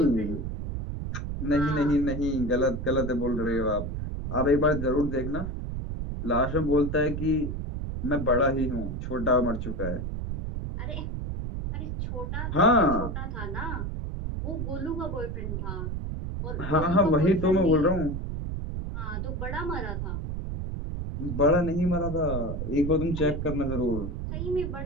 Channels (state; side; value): noise; right; rumble, 4 dB below the sound